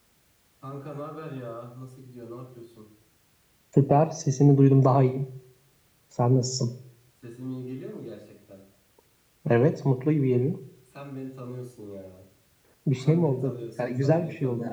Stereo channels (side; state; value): both; identical; correlation 1.00